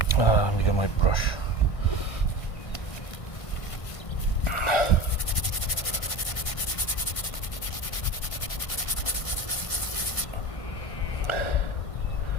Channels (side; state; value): right; late; 1.6 ms